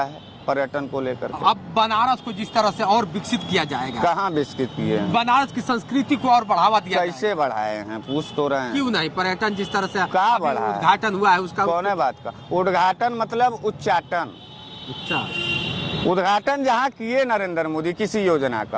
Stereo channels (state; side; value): identical; both; correlation 1.00